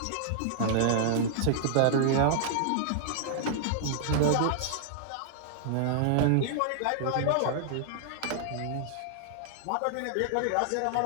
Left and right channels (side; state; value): both; different; correlation -0.01